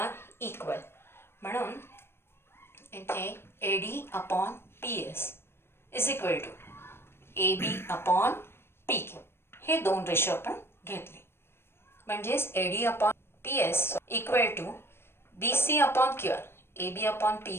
equal. म्हणून इथे AD upon PS is equal to AB upon PQ. हे दोन ratio आपण घेतले. म्हणजेच AD upon PS equal to BC upon QR. AB upon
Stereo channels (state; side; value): late; right; 0.12 ms